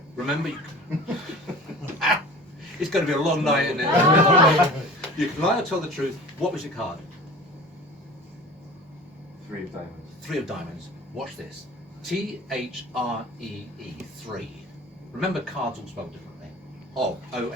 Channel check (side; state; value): both; normal; correlation 0.40